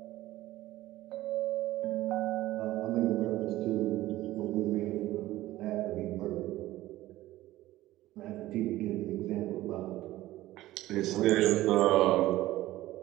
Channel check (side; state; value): left; quieter; 16.0 dB